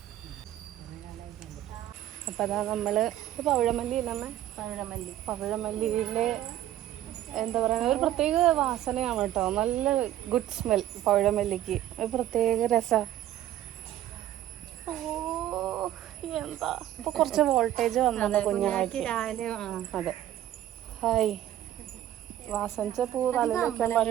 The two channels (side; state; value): left; quieter; 12.7 dB